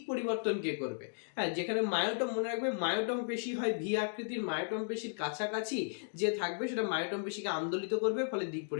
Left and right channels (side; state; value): right; silent; digital silence